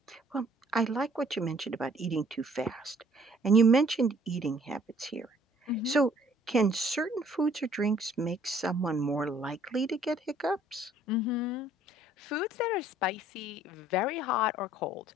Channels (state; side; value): normal; both; correlation 0.59